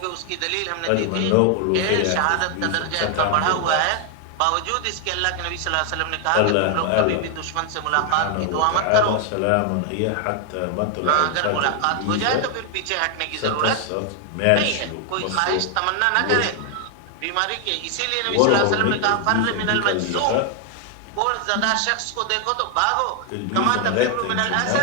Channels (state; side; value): different; both; correlation 0.00